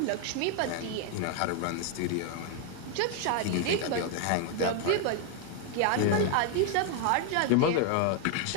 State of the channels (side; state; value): both; different; correlation 0.01